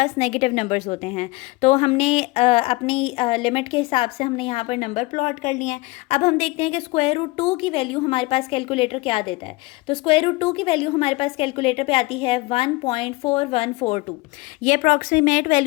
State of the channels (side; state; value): right; quieter; 22.8 dB